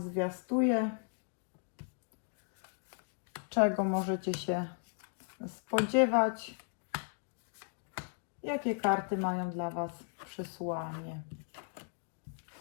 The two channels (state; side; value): silent; right; 54 dB below the other